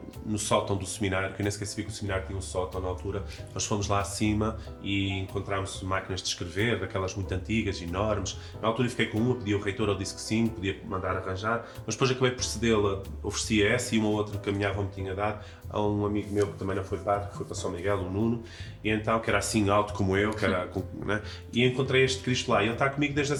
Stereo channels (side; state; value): both; identical; correlation 1.00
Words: no sótão do seminário, que eu nem sequer sabia que o seminário tinha um sótão na altura. Nós fomos lá acima e encontramos máquinas de escrever, daquelas muito antigas, enormes. Na altura eu fiquei com uma, pedi ao reitor, ele disse que sim, podia mandar arranjar, mas depois acabei por cedê-la, oferecia essa e uma outra que a minha avó me tinha dado a um amigo meu que também não foi padre, que foi para São Miguel, o Nuno, e então, que era assim alto como eu, que era, né? E encontrei este Cristo lá, e ele está comigo desde